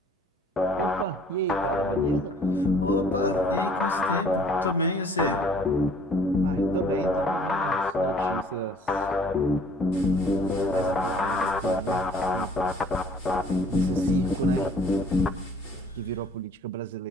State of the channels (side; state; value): both; normal; correlation 0.55